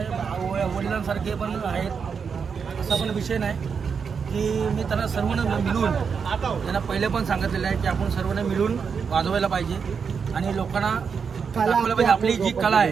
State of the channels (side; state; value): left; quieter; 6.1 dB